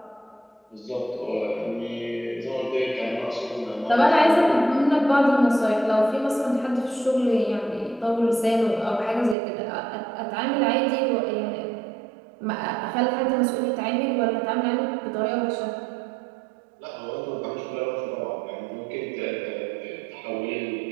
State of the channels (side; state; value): left; drops out; at 9.3 s